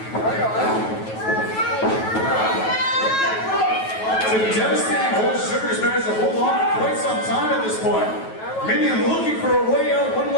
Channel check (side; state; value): right; late; 9.2 ms